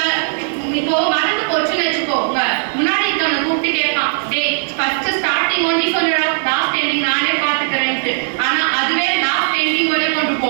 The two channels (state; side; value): silent; left; digital silence